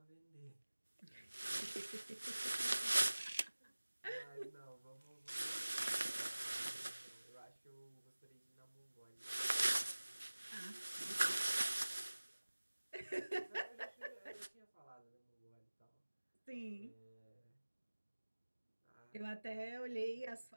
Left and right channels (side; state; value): both; inverted; correlation -1.00